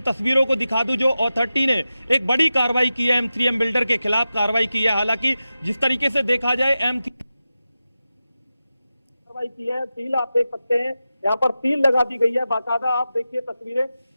तस्वीरों को दिखा दूं जो अथॉरिटी ने एक बड़ी कार्रवाई की है, M3M बिल्डर के खिलाफ कार्रवाई की है। हालांकि जिस तरीके से देखा जाए कार्रवाई की है, सील आप देख सकते हैं, यहाँ पर सील लगा दी गई है बाकायदा। आप देखिए तस्वीरें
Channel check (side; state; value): both; inverted; correlation -0.93